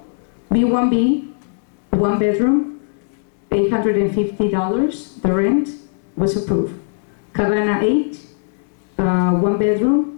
B1B, 1 bedroom, $850, the rent was approved. Cabana 8, 1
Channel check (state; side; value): silent; right; digital silence